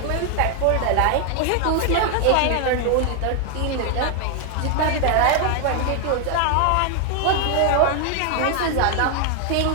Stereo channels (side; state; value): both; different; correlation 0.00